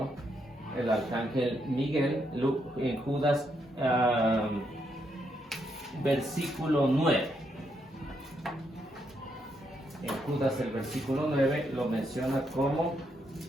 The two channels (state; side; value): normal; both; correlation 0.78